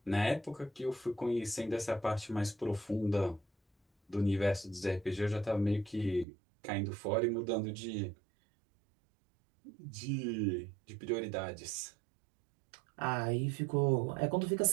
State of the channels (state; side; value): drops out; left; at 6.2 s